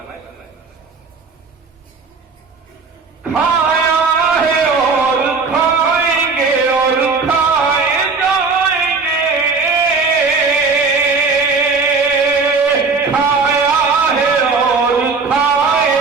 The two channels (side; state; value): left; quieter; 4.6 dB